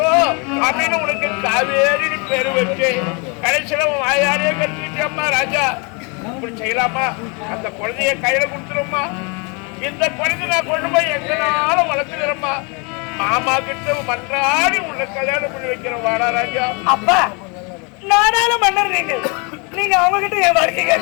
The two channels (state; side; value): quieter; right; 32.6 dB